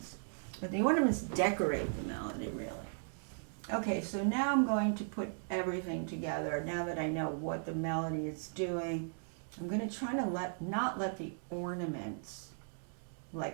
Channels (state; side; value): silent; left; digital silence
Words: But the ornaments decorate the melody, really. Okay, so now I'm going to put everything together. Now that I know what the melody is doing, I'm going to try to not let the ornaments